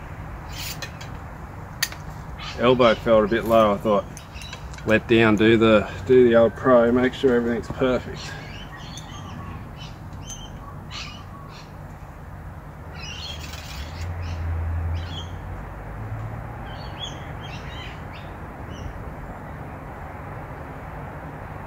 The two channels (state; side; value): identical; both; correlation 1.00